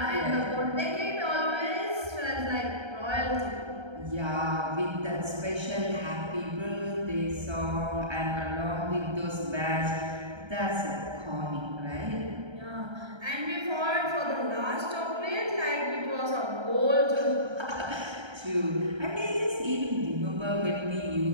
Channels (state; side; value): late; left; 1.3 ms